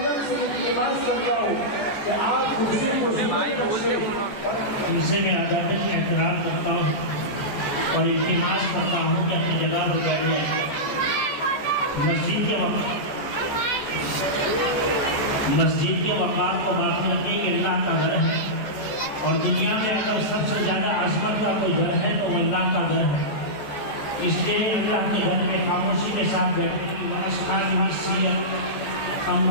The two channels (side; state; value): right; late; 14 ms